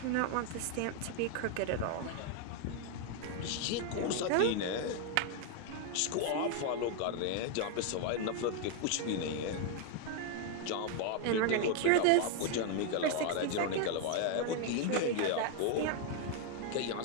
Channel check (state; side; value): different; both; correlation 0.00